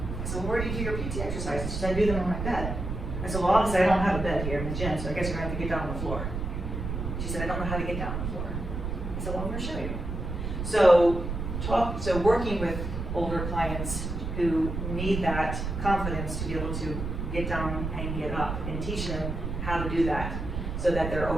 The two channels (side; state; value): right; noise; rumble, 4 dB below the sound